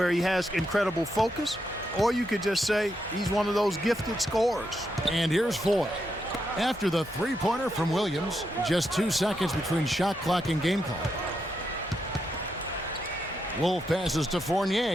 he has incredible focus, or you could just say he's one of those gifted scorers. And here's Ford. After the three-pointer from Williams, just 2 seconds between shot clock and game clock. Wolf passes to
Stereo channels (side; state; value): both; normal; correlation 0.82